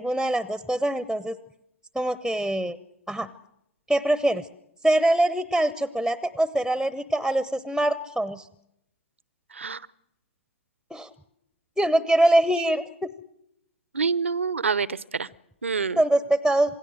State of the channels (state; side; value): normal; both; correlation 0.79